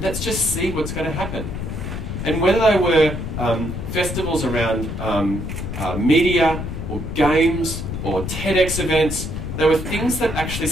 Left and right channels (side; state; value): left; noise; rumble, 5 dB below the sound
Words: let's just see what's going to happen. And whether they were festivals around media or games or TEDx events, there were things that actually